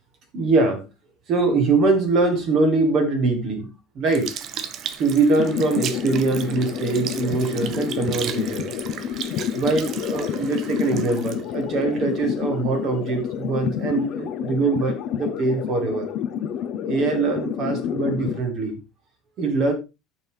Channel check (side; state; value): both; normal; correlation 0.46